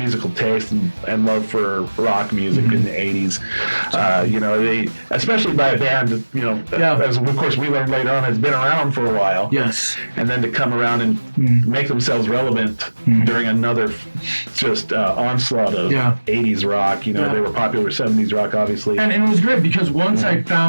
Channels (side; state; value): both; inverted; correlation -1.00